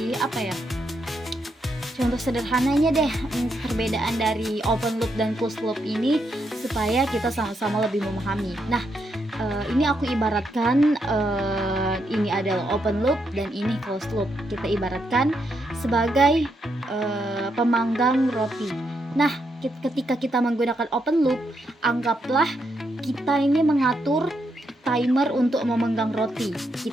contoh sederhananya deh, perbedaan dari open loop dan closed loop ini supaya kita sama-sama lebih memahami. Nah, ini aku ibaratkan ini adalah open loop dan ini closed loop. Kita ibaratkan sebagai pemanggang roti. Nah, ketika kita menggunakan open loop, anggaplah kita ini mengatur timer untuk memanggang roti.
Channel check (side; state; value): both; normal; correlation 0.80